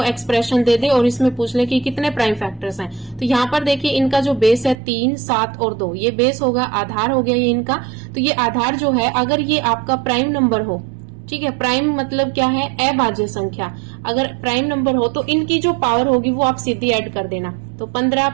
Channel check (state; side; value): drops out; left; at 4.8 s